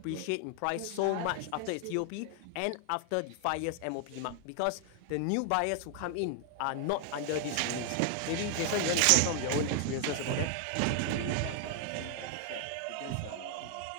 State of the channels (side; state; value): both; different; correlation 0.00